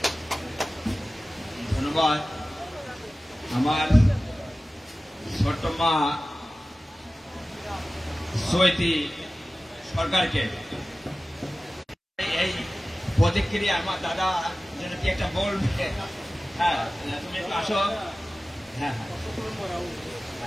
ধন্যবাদ আমার ছোট্ট মা সৈতি সরকারকে। এই প্রতিক্রিয়া আমার দাদা যেন কি একটা বলবে। হ্যাঁ, তুমি একটু আসো। হ্যাঁ,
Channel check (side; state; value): both; normal; correlation 0.96